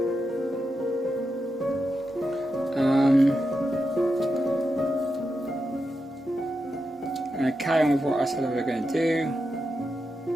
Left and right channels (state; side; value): normal; both; correlation 0.87